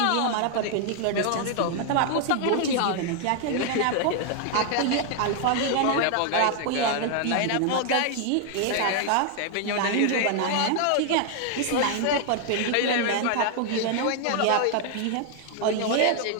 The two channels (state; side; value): different; both; correlation 0.00